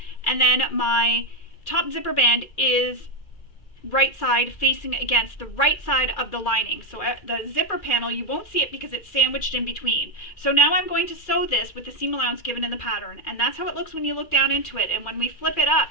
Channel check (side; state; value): right; late; 2.4 ms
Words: and then my top zipper band is right side facing against the right side of the lining. So at the zipper panel, you won't see it because it's sandwiched in between. So now I'm going to sew this with the seam allowance given in the pattern, and that's how it looks when you look down into it. And when we flip it up,